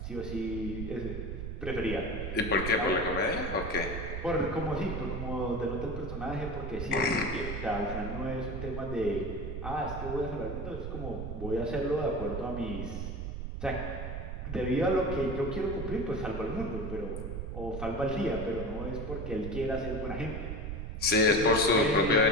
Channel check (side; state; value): right; noise; rumble, 5 dB below the sound